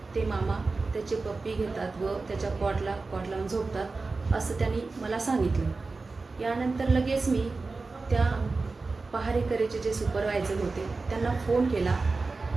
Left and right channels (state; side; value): quieter; left; 3.8 dB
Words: ते मामा त्याचे पप्पी घेतात व त्याच्या कॉट लावून झोपतात असं त्यांनी मला सांगितलं. यानंतर लगेच मी त्या पहारेकरीचे जे सुपरवायझर होते त्यांना फोन केला